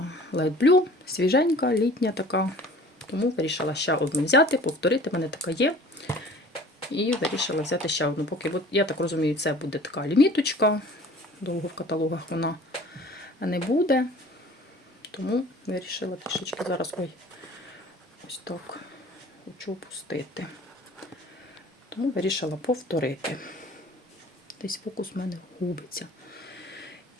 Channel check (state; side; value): normal; both; correlation 0.47